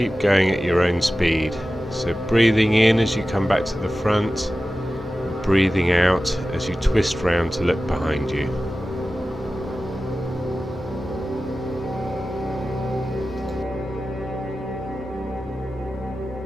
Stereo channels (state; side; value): normal; both; correlation 0.95